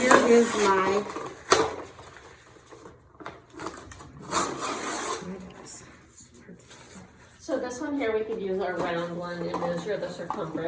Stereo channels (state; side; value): identical; both; correlation 1.00